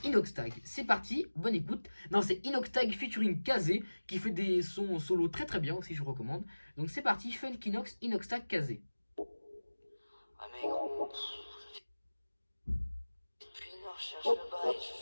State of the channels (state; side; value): inverted; both; correlation -1.00